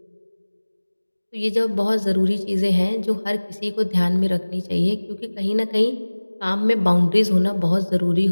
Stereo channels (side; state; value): both; inverted; correlation -1.00